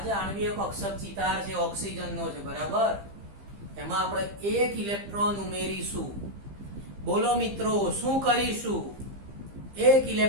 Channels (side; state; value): left; late; 15 ms